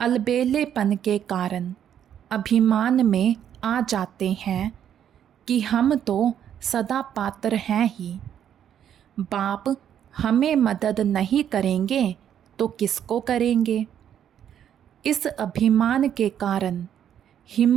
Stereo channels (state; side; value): quieter; left; 9.6 dB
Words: अलबेलेपन के कारण अभिमान में आ जाते हैं कि हम तो सदा पात्र हैं ही। बाप हमें मदद नहीं करेंगे तो किसको करेंगे। इस अभिमान के कारण